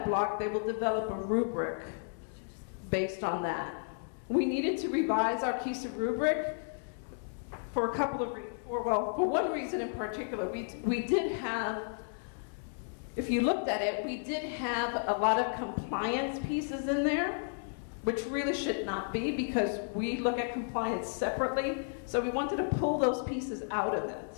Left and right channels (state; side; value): silent; right; digital silence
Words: block, they will develop a rubric based on that. We needed to revise our KSDE rubric for a couple of reasons. Well, for one reason in particular. We did have, if you looked at it, we did have a lot of compliance pieces in there, which really should not be, because we look at compliance separately. So we wanted to pull those pieces out of